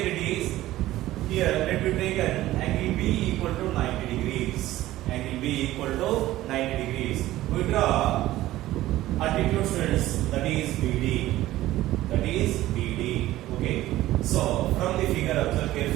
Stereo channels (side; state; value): left; quieter; 15.6 dB